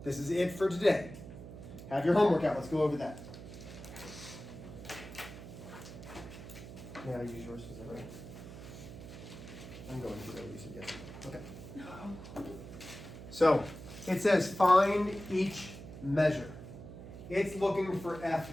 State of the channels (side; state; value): right; noise; hum, 13 dB below the sound